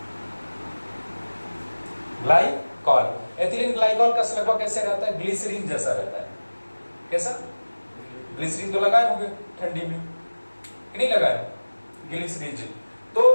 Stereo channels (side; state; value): both; inverted; correlation -1.00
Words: glycol. एथिलीन ग्लाइकॉल का लगभग कैसे रहता है? ग्लिसरीन जैसा रहता है। कैसा? ग्लिसरीन तो लगाए होंगे ठंडी में, कि नहीं लगाए? ग्लिसरीन। तो